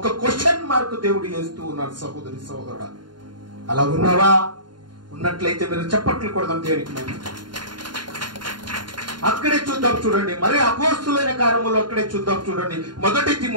క్వశ్చన్ మార్క్ దేవుడు వేస్తూ ఉన్నాడు. సహోదరి సహోదరుడా, అలా ఉన్నావా? ఉన్నట్లయితే మీరు చప్పట్లు కొడదాం దేవునికి. మేము అక్కడే చూద్దాం చూడండి. మరి అపోస్తులైన కార్యములు అక్కడే చూద్దాం చూడండి. 1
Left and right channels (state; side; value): late; left; 0.71 ms